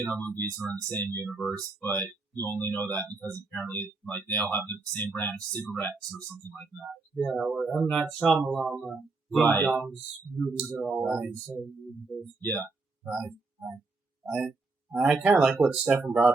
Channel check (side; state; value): left; quieter; 3.7 dB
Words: movies are in the same universe, but you only know that because apparently like they all have the same brand of cigarettes or something like that. Yeah, or M. Night Shyamalan, Right. Dong's movies are all in the same universe. Yeah. Right. I kind of like what Stefan